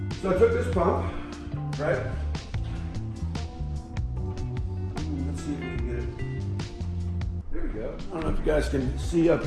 So I took this pump, right? Let's see if we can get it. There we go. I don't know if you guys can see up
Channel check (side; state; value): both; identical; correlation 1.00